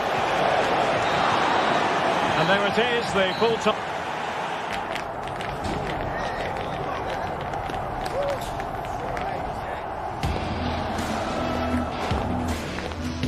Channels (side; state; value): both; identical; correlation 1.00